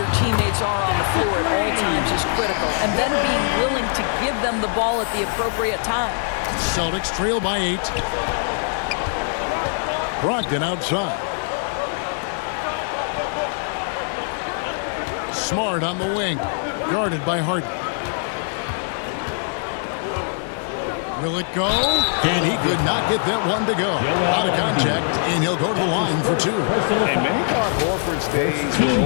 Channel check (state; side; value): silent; right; digital silence